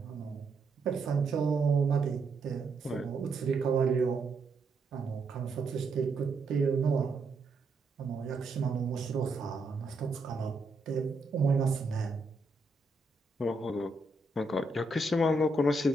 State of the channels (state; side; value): quieter; left; 3.1 dB